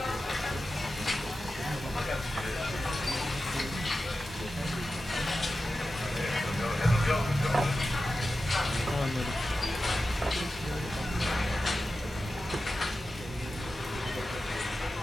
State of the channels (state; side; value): normal; both; correlation 0.93